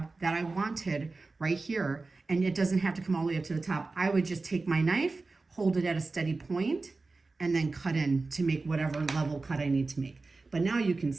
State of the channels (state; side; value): quieter; left; 3.7 dB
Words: that I wanted right here, and it doesn't have to come all the way up to the top. I would just take my knife, hold it at a steady point, and then cut in to make whatever level cut I need to make. But now you can